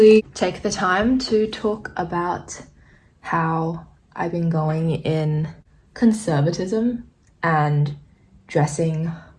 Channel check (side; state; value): both; identical; correlation 1.00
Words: take the time to talk about how I've been going in conservatism and dressing